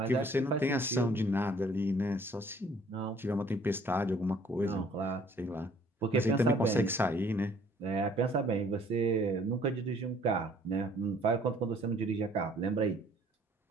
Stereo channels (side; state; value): both; normal; correlation 0.58